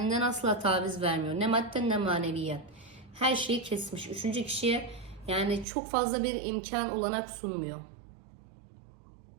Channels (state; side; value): drops out; left; at 5.7 s